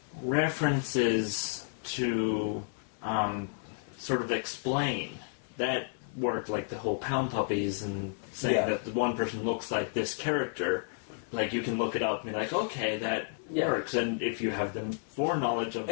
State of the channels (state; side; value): silent; right; 57 dB below the other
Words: references to sort of explain... That worked, like the whole Pound Puppies and saying that the one person looks like this character. Like, you can look it up and be like, okay, that works. And if you have the foreknowledge of